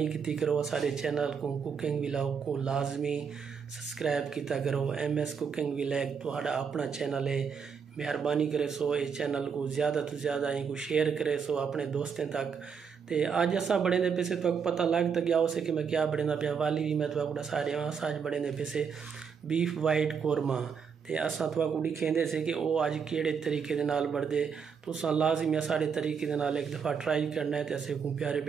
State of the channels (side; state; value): left; quieter; 6.4 dB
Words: की करो सारे चैनल को कुकिंग व्लॉग को लाजमी सब्सक्राइब किया करो। MS कुकिंग व्लॉग तुहाड़ा अपना चैनल है, मेहरबानी करे सो इस चैनल को ज़्यादा तो ज़्यादा इनको शेयर करे सो अपने दोस्तों तक। तो अज असा बड़े पैसे तो पता लग तो गया उसे कि मैं क्या बड़े पिया वाली भी मैं तो सारे अज बड़े पैसे बीफ वाइट कोरमा। तो असा तो दिखेंदे से कि वो अज केड़े तरीके दे नाल बढ़दे तो लाजमी सारे तरीके दे नाल एक दफ़ा ट्राई करना है। तो असे को प्यारे